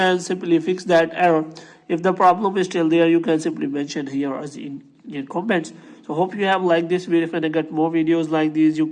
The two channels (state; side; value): identical; both; correlation 1.00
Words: simply fix that error. If the problem is still there, you can simply mention here as in comments. So hope you have liked this video. If you get more videos like these, you